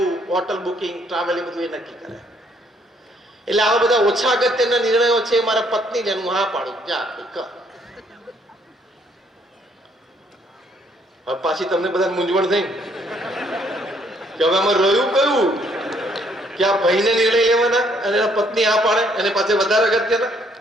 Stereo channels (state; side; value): normal; both; correlation 0.67